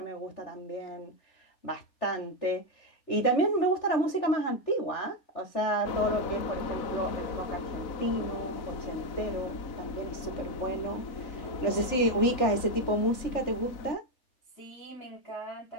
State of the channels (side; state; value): right; late; 3.4 ms